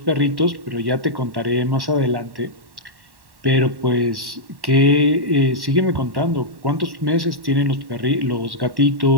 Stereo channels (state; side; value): late; left; 1.1 ms